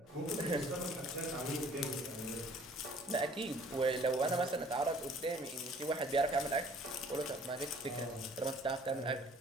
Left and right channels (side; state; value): both; normal; correlation 0.55